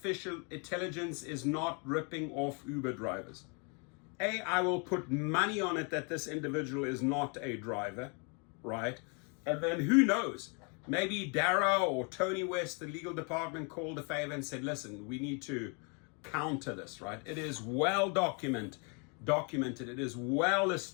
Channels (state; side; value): quieter; right; 35.5 dB